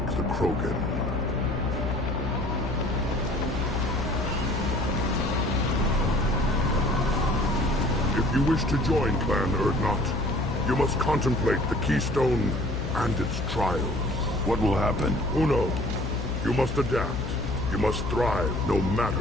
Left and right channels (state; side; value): noise; left; hum, 4 dB below the sound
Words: the Krogan. If you wish to join Clan Urdnot, you must contemplate the Keystone and its trials. What will happen? Who knows? You must adapt. You must thrive no matter